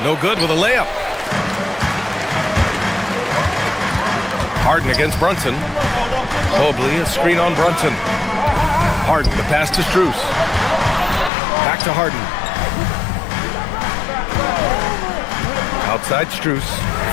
No good with a layup. Harden against Brunson. Mobley, a screen on Brunson. Harden, the pass to Strus. Back to Harden. Outside Strus.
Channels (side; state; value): right; drops out; at 11.3 s